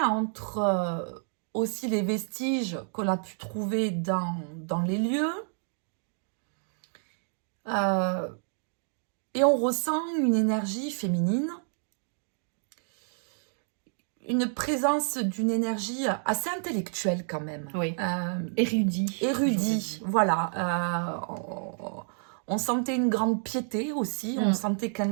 entre aussi les vestiges qu'on a pu trouver dans les lieux. Et on ressent une énergie féminine. Une présence d'une énergie assez intellectuelle quand même. Oui. Érudit, voilà. On sentait une grande piété aussi. On sentait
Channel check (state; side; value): silent; left; 58 dB below the other